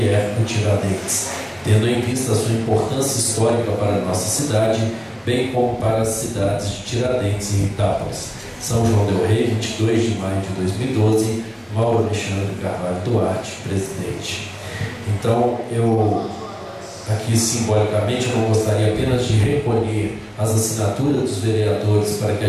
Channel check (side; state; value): both; identical; correlation 1.00